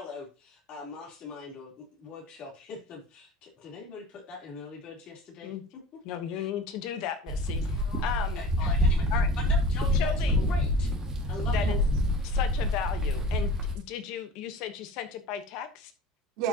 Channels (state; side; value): normal; both; correlation 0.39